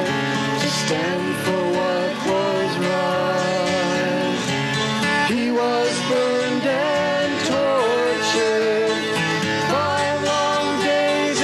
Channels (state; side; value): identical; both; correlation 1.00